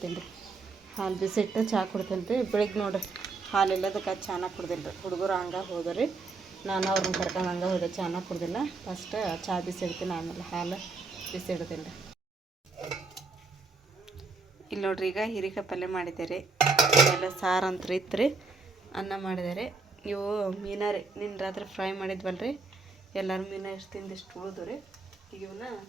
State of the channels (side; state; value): left; quieter; 4.1 dB